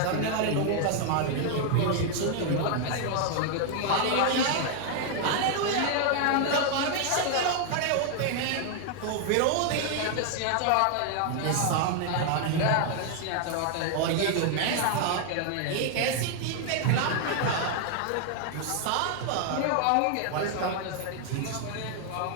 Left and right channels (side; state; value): both; different; correlation 0.00